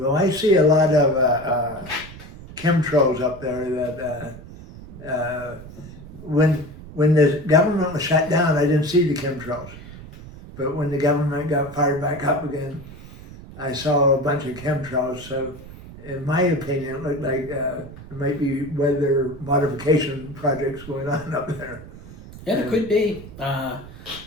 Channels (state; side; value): noise; right; rumble, 16 dB below the sound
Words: I see a lot of chemtrails up there that when the government was shut down, I didn't see the chemtrails. But when the government got fired back up again, I saw a bunch of chemtrails. So in my opinion, it looked like there might be weather modification projects going on up there. Yeah, there could be.